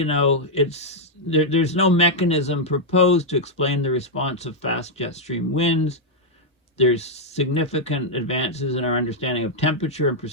know, there's no mechanism proposed to explain the response of fast jet stream winds. There's significant advances in our understanding of temperature and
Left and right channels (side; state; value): both; normal; correlation -0.03